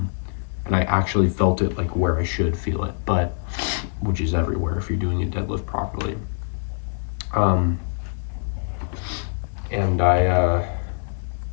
I actually felt it like where I should feel it, but which is everywhere if you're doing a deadlift properly. And I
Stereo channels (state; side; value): silent; right; digital silence